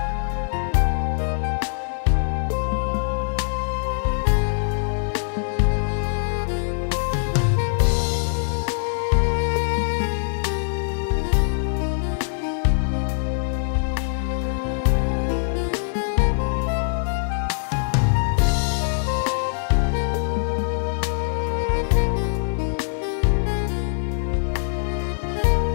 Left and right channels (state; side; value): silent; right; digital silence